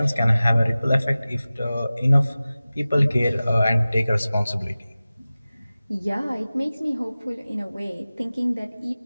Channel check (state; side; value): inverted; both; correlation -0.97